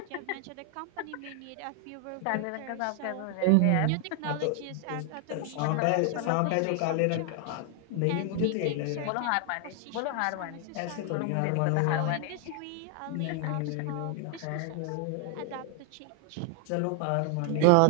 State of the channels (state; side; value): different; both; correlation 0.00